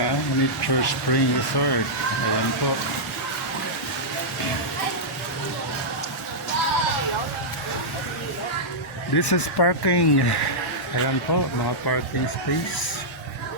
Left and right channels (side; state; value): both; normal; correlation -0.11